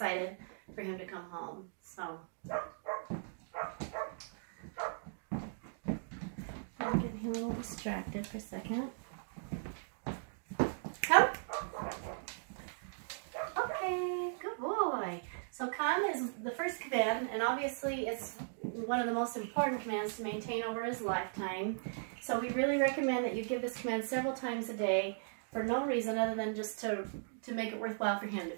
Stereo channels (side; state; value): left; silent; digital silence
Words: for him to come home. So I'm getting him a little distracted for a second. Come. Okay, good boy. So come is the first command, and obviously it's one of the most important commands to maintain over his lifetime. So we really recommend that you give this command several times a day for no reason other than just to make it worthwhile for him. To